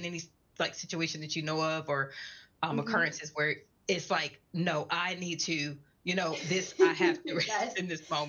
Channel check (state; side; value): identical; both; correlation 1.00